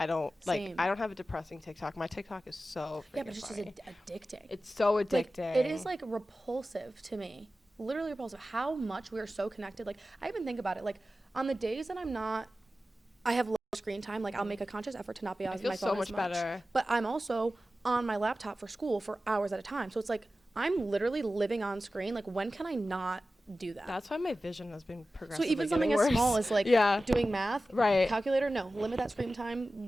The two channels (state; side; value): normal; both; correlation 0.95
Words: don't like Same. I don't have a depressing TikTok. My TikTok is so freaking Yeah, but it's just funny. addicting. It's so Like, addicting. it is like repulsive to me. Literally repulsive. How much we are so connected. Like I even think about it. Like on the days that I have low screen time. Like I'll make a conscious effort to not be on feel my so phone much as much. better. But I'm also on my laptop for school for hours at a time. So it's like I'm literally living on screen. Like when can I not do that? That's why my vision has been so progressively even something getting as worse. small as like yeah. doing math, Right. calculator, no, limit that screen